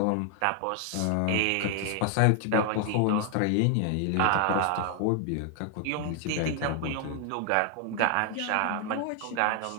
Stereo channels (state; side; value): different; both; correlation 0.00